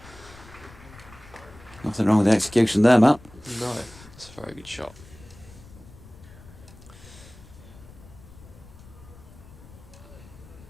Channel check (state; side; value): noise; left; rumble, 20 dB below the sound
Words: Nothing wrong with the execution there, Matt. No, it's a very good shot.